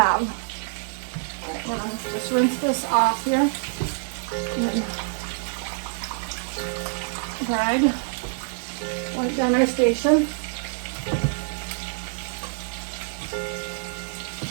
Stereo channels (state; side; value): silent; left; digital silence